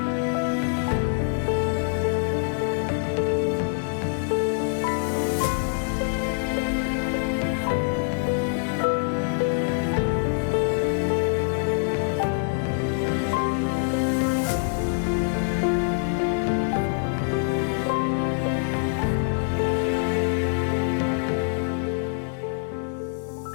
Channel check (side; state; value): right; silent; 62 dB below the other